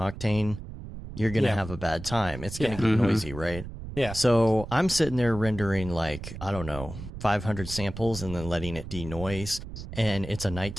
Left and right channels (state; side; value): noise; right; rumble, 11 dB below the sound